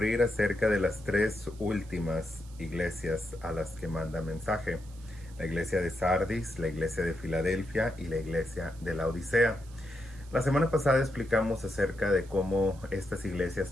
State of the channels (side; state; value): right; noise; hiss, 25 dB below the sound